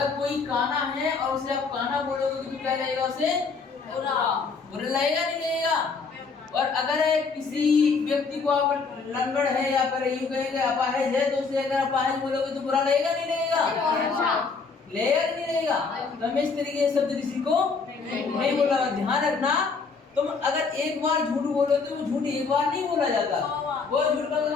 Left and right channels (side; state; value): right; quieter; 4.8 dB